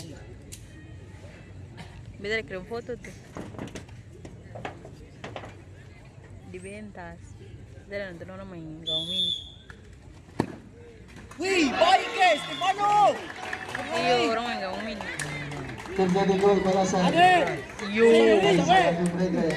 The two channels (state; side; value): identical; both; correlation 1.00